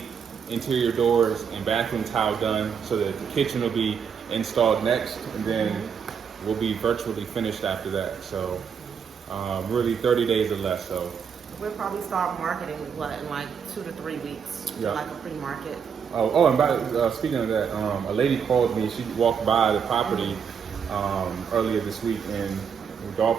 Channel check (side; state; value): left; quieter; 6.9 dB